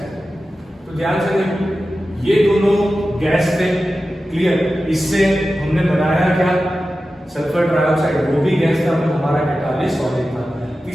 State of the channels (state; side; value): normal; both; correlation 0.93